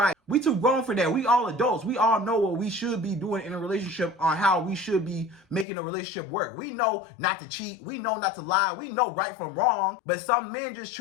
We too grown for that. We all adults. We all know what we should be doing in a relationship, on how we should be making a relationship work. We know not to cheat. We know not to lie. We know right from wrong. But some men just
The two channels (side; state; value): right; drops out; at 5.7 s